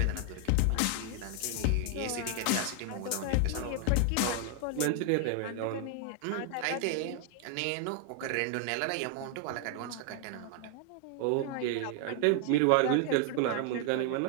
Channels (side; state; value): both; different; correlation 0.00